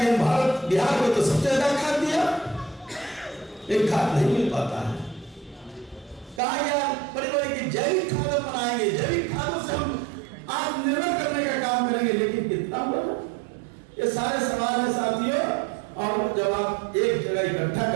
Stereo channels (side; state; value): left; drops out; at 6.4 s